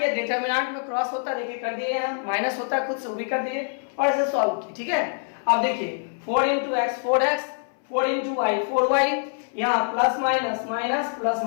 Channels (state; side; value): silent; right; 59 dB below the other